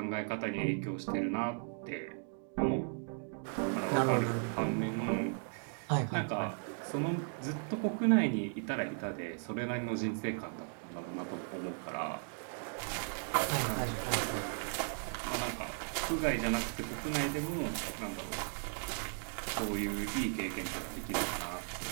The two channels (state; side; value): silent; left; 53 dB below the other